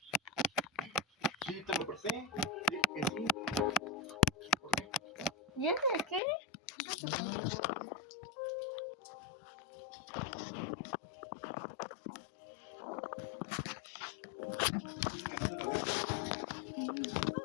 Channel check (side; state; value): right; drops out; at 6.2 s